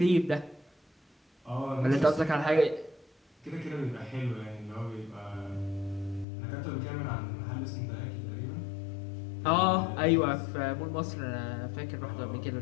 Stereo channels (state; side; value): drops out; right; at 6.2 s